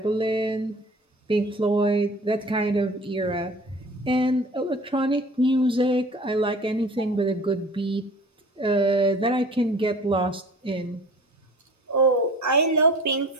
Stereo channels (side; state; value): both; normal; correlation 0.44